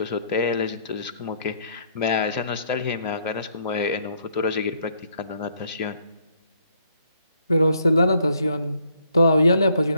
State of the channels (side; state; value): both; inverted; correlation -0.68